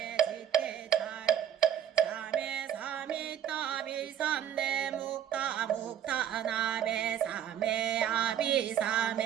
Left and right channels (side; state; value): left; quieter; 9.8 dB